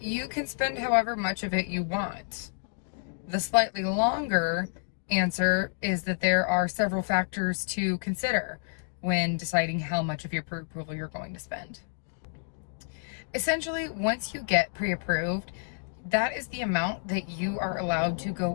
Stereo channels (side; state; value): right; silent; digital silence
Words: can spend however much of it you want. The slightly longer answer is that there are several factors to consider when deciding how much of your pre-approval you're going to spend. Essentially, once you get pre-approved, that is the amount that you are allowed to